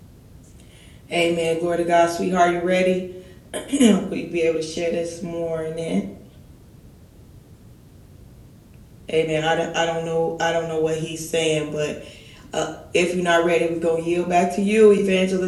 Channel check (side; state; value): both; identical; correlation 1.00